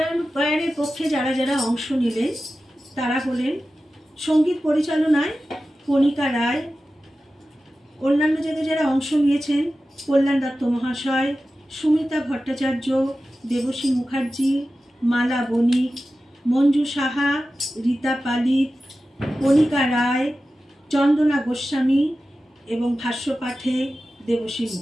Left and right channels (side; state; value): both; normal; correlation 0.94